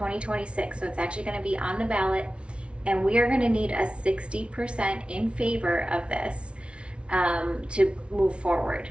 So it's actually going to be on the ballot, and we are going to need a 60% in favor of this to move forward.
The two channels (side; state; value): left; late; 0.059 ms